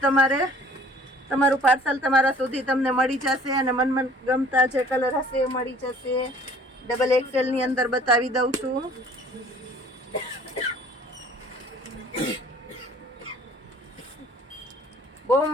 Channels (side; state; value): both; normal; correlation 0.52